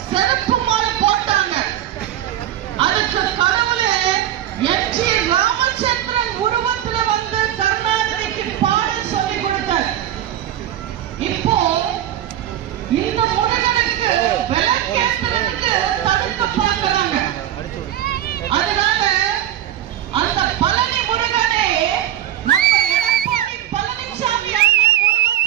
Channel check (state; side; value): quieter; left; 12.0 dB